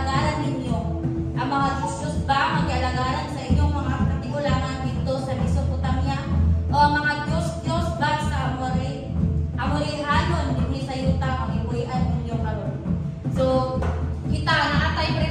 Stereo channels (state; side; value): identical; both; correlation 1.00